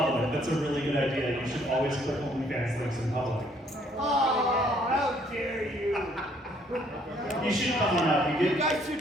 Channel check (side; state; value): both; normal; correlation 0.65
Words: That's a really good idea. You should always click OnlyFans links in public. Oh, how dare you! You should come on up. You guys